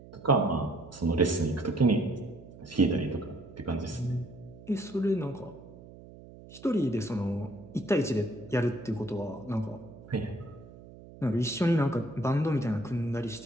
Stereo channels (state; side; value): noise; right; hum, 18 dB below the sound